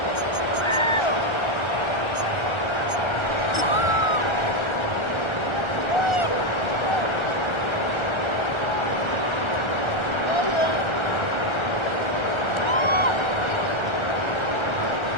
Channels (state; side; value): late; right; 1.3 ms